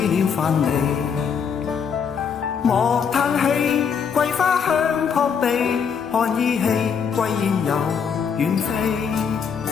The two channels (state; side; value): quieter; right; 6.7 dB